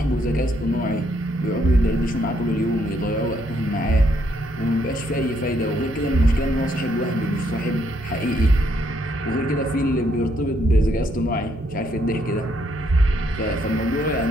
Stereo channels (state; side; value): normal; both; correlation 0.72